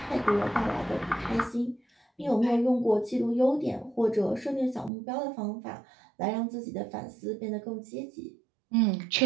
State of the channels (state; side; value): drops out; left; at 4.9 s